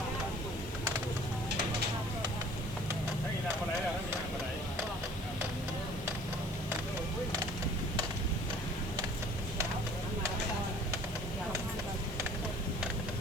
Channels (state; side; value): noise; left; hiss, 18 dB below the sound